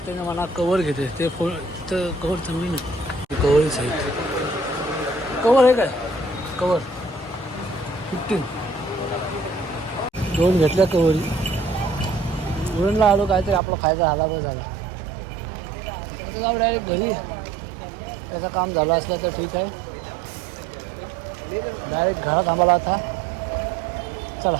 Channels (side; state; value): left; drops out; at 13.6 s